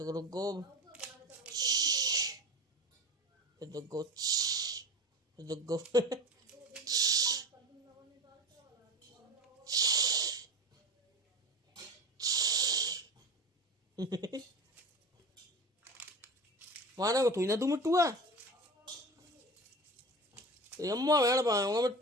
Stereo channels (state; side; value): normal; both; correlation 0.30